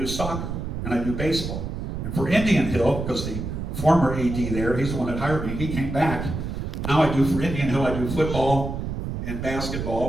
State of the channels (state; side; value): noise; right; rumble, 5 dB below the sound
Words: soccer, and I do baseball. And for Indian Hill, because the former AD there, he's the one that hired me, he came back. Now I do for Indian Hill, I do football and